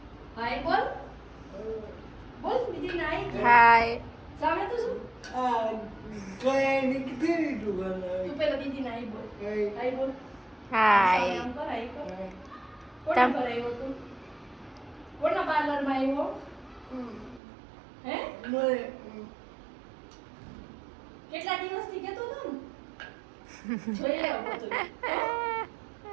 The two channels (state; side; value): drops out; left; at 17.4 s